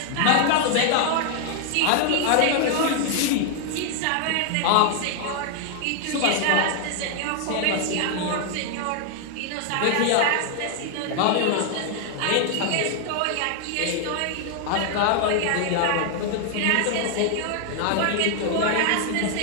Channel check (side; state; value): both; different; correlation 0.00